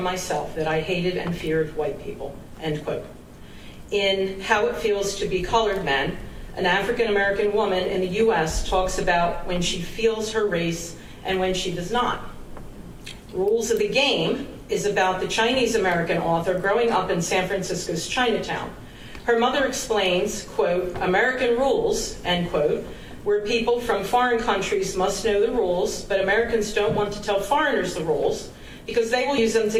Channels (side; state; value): both; identical; correlation 1.00